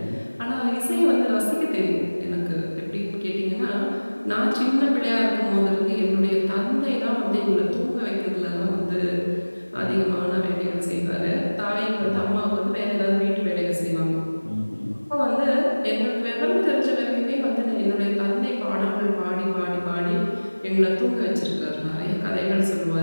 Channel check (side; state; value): both; inverted; correlation -1.00